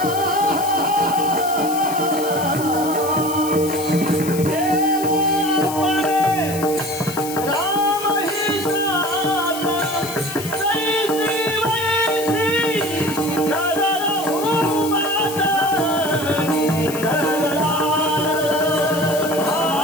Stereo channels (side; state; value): left; noise; hiss, 10 dB below the sound